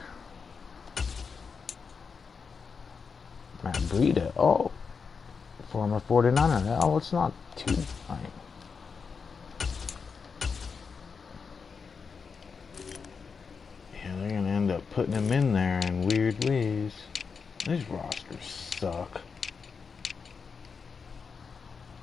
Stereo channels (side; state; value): right; quieter; 5.5 dB